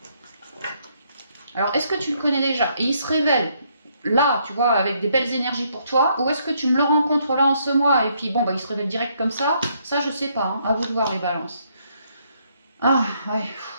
Alors, est-ce que tu le connais déjà? Et il se révèle là, tu vois, avec des belles énergies pour toi, ou est-ce que tu me le rencontres là en ce mois, et puis bon, bah il se révèle direct comme ça je sais pas, hein, à vous de voir les balances. Ah, ouais,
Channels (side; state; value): both; inverted; correlation -0.71